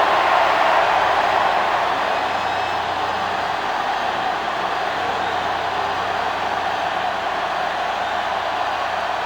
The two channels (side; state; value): left; noise; hum, 24 dB below the sound